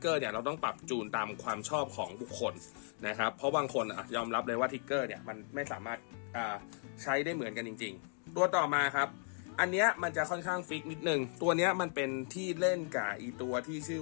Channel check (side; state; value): right; silent; 54 dB below the other